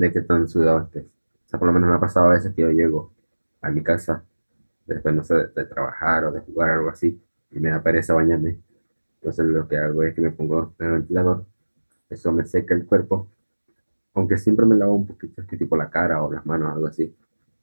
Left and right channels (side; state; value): both; inverted; correlation -1.00